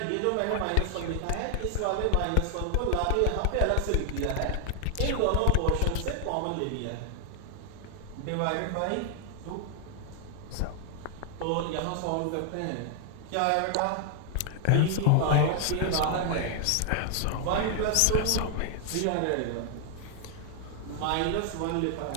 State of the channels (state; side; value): different; both; correlation 0.00